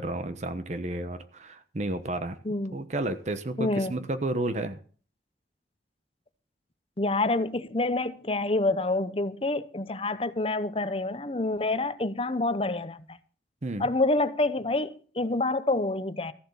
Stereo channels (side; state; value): both; normal; correlation 0.37